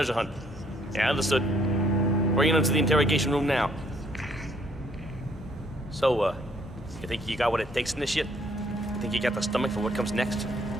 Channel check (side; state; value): right; noise; hum, 20 dB below the sound